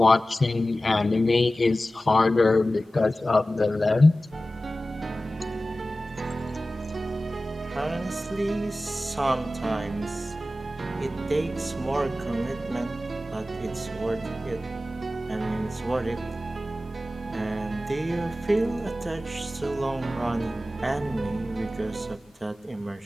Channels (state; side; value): normal; both; correlation 0.95